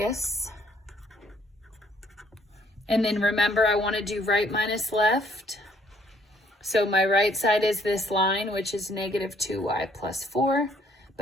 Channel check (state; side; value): normal; both; correlation 0.65